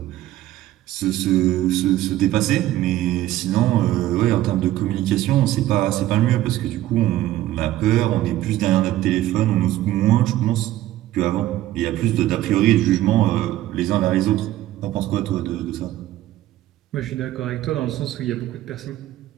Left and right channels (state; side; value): quieter; left; 14.5 dB